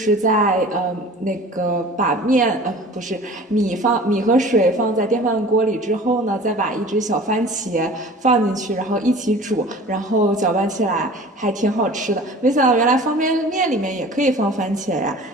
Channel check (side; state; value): both; normal; correlation 0.43